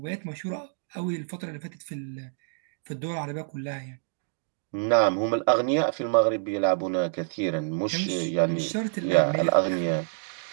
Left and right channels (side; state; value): left; silent; digital silence